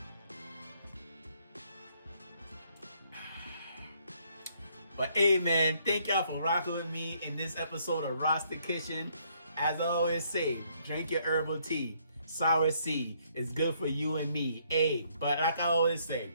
But hey, man, thank y'all for rocking with me in this episode of Rasta Kitchen. As I always say, drink your herbal tea. Cerasee is good for you and me. Hey, but like I always say,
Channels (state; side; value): inverted; both; correlation -0.69